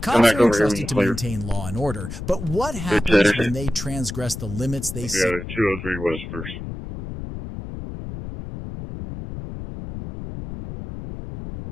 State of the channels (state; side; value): noise; left; rumble, 9 dB below the sound